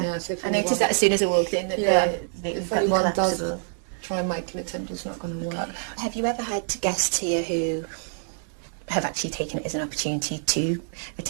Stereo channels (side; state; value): left; silent; 61 dB below the other